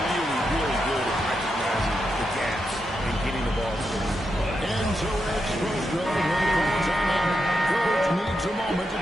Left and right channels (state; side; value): normal; both; correlation 0.85